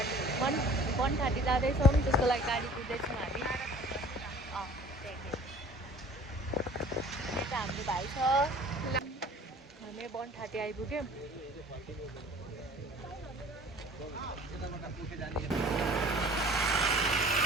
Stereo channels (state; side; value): normal; both; correlation 0.48